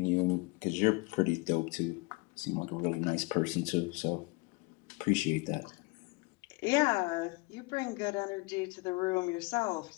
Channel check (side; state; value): right; quieter; 26.6 dB